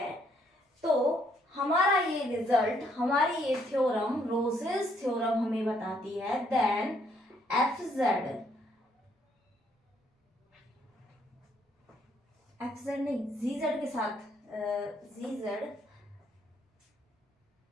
तो हमारा ये रिजल्ट, हमारी ये थ्योरम, रोसेस थ्योरम हमें बताती है देन एफ जेड नहीं, जी जेड के साथ जी जेड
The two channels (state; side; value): normal; both; correlation 0.70